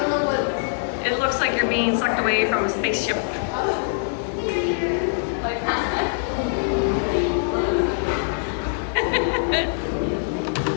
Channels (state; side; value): silent; right; digital silence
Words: know what. It looks like you're being sucked away from a spaceship. Like that.